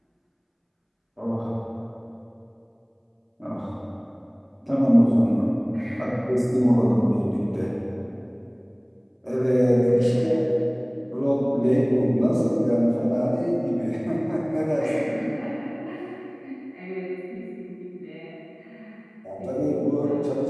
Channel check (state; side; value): identical; both; correlation 1.00